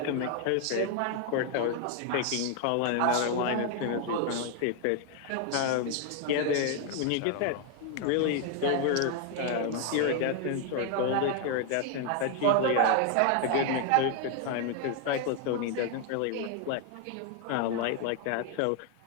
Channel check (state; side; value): different; both; correlation 0.00